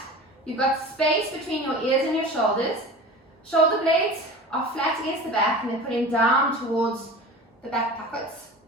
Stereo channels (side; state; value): both; normal; correlation 0.36